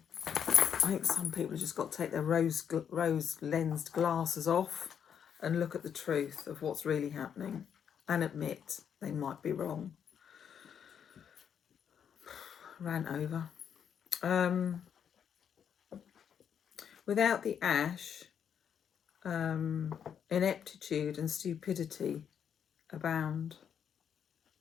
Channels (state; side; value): quieter; right; 8.1 dB